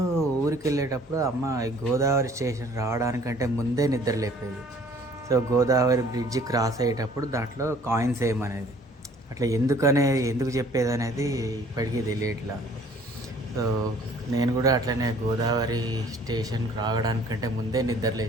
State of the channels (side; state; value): both; normal; correlation 0.55